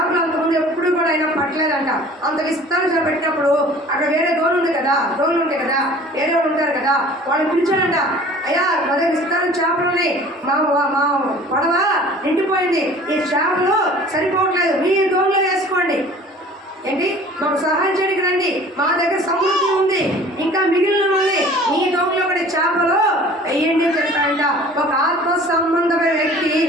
అంతకుముందు ఎప్పుడు కూడా ఆయన పట్టలేదంట. అంత విస్తార చేప పెట్టినప్పుడు అక్కడ వేరే దోణులు ఉంటాయి కదా, వేరే వాళ్ళు ఉంటారు కదా, వాళ్ళు పిలిచాడంట, అయ్యా మన విస్తారం చేపలు ఉన్నాయి, మా పడవ నిండిపోయింది, ఈ చేపలు సరిపోవట్లేదు, మీ దోణులు వేసుకోండి, ఏంటి మాకు సహాయం చేయడానికి రండి, మా దగ్గర సమృద్ధి ఉంది, ఇంకా మిగిలిన ఉంది, మీ దోమలో ఒకటి చేపలు వెయ్యండి చెప్పాడంట. ఒక ఆత్మ సంబంధమైన వ్యక్తి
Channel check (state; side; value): normal; both; correlation 0.47